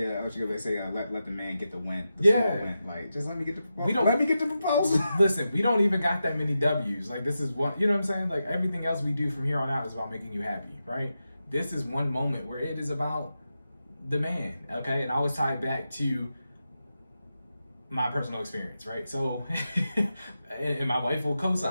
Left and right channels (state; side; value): inverted; both; correlation -0.89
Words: they say, let the man get the win. Like, just let me get the proposal. Let me get the proposal. Listen, we don't even got that many W's. Like, this is what, you know what I'm saying? Like, everything else we do from here on out is about making you happy, right? This is one moment where it is about the man, okay? And I always tie it back to my personal experience, right? So, and my wife will